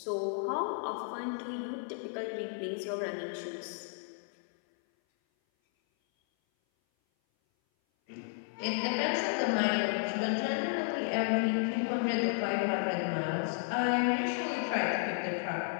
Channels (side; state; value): right; silent; 56 dB below the other